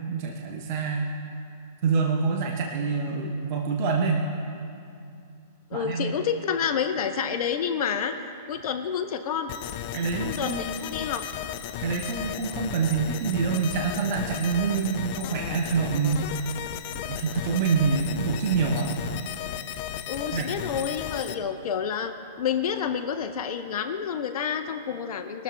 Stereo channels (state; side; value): inverted; both; correlation -0.37